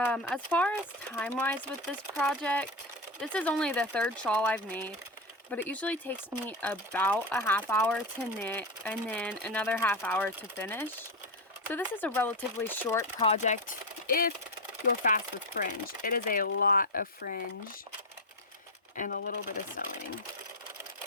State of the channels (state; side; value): normal; both; correlation 0.13